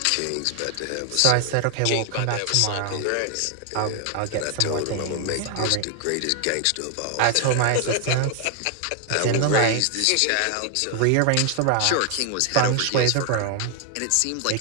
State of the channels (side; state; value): both; different; correlation 0.00